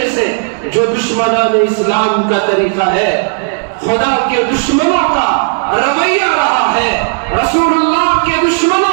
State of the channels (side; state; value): left; silent; digital silence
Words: سے، جو دشمنان اسلام کا طریقہ ہے، خدا کے دشمنوں کا رویہ رہا ہے، رسول اللہ کے